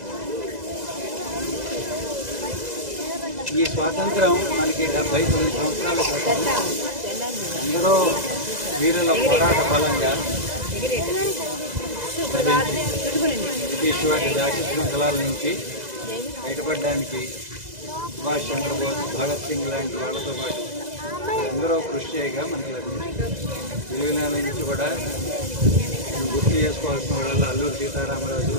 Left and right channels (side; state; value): left; late; 2.0 ms